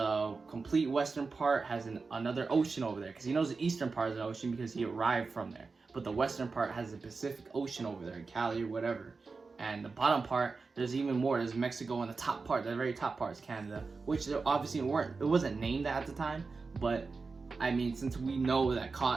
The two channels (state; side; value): quieter; left; 4.3 dB